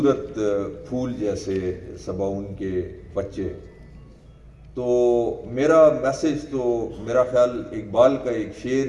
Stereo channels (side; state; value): both; identical; correlation 1.00